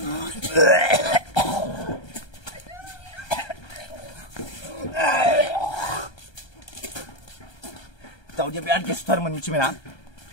दावदिया बिराद गेसथारमोन मिथिबायना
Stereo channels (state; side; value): late; right; 1.3 ms